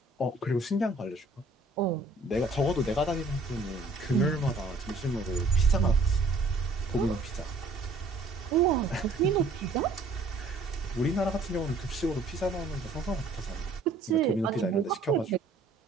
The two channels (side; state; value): left; quieter; 3.1 dB